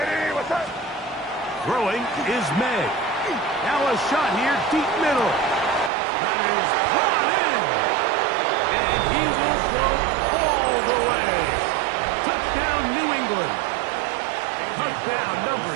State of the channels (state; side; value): drops out; left; at 5.9 s